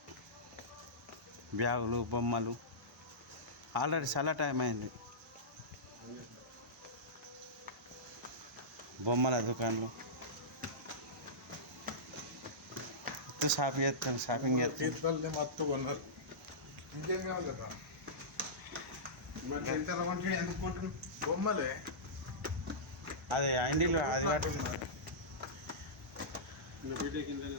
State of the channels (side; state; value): both; normal; correlation -0.16